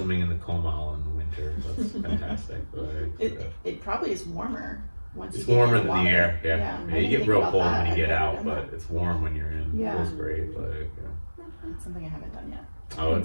in the Comal in the winter. That's fantastic. It probably is warmer once it's you get warmer in the than water. the air. You get real cold when you get out, but it's warm when you're in. Yeah. It feels great. It's something I haven't done yet. Oh,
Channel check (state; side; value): inverted; both; correlation -1.00